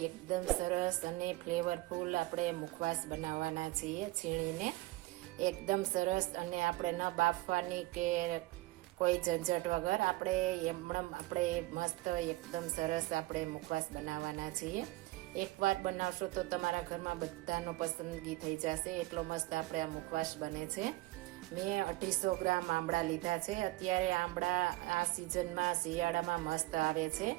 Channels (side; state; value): left; quieter; 20.0 dB